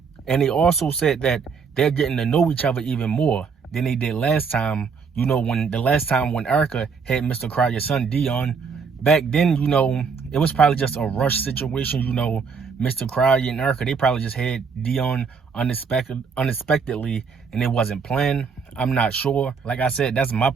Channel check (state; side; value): quieter; left; 5.6 dB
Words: And they also said that they're getting to know each other even more than they did last time. You know, when Erica had Mr. Cryer's son, Dion. Back then, you know, it was probably just a rush situation, you know. Mr. Cryer and Erica, they probably just had Dion unexpectedly, and it wasn't planned. I'm not sure. Like I said, that's my